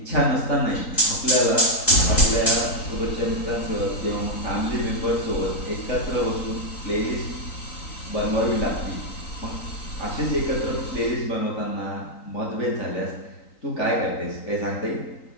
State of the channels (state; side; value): late; right; 3.9 ms